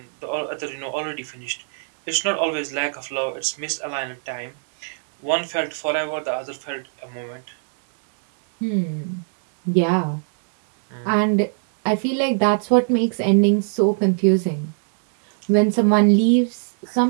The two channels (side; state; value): left; silent; digital silence